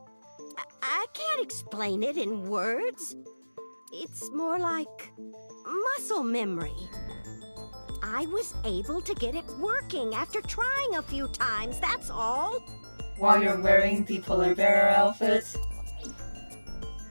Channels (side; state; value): both; inverted; correlation -1.00